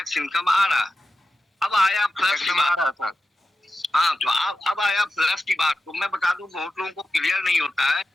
इनकम आ रहा है। अब आया प्लस की बात। हाँ, तो अब आया प्लस की बात। तो मैं बता दूं, बहुत लोगों को क्लियर नहीं होता है।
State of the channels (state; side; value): normal; both; correlation 0.92